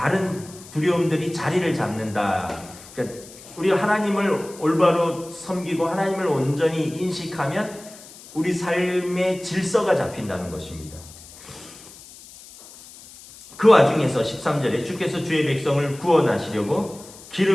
두려움들이 자리를 잡는다. 그러니까 우리가 하나님을 올바로 섬기고 하나님을 온전히 인식하면 우리 삶의 질서가 잡힌다는 것입니다. 그 와중에서 13절에 주께서 주의 백성을 구원하시려고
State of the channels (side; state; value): left; noise; hiss, 19 dB below the sound